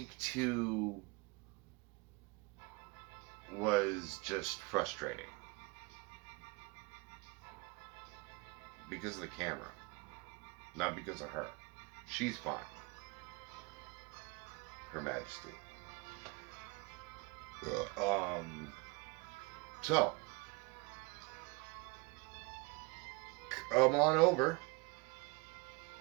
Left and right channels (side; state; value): left; quieter; 27.3 dB